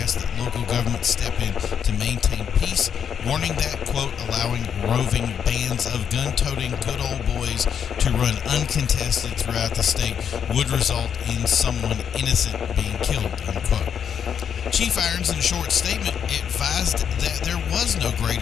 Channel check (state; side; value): quieter; right; 7.9 dB